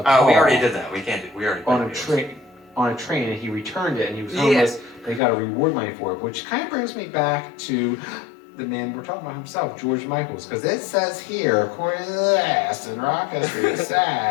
Oh, we already did that. We already played on a train, and he returned it, and he was homeless. And he got a reward money for it, which kind of brings me back to the man we're talking about himself, George Michael's, because it says here, according to this, in rock history, it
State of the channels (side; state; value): right; drops out; at 5.2 s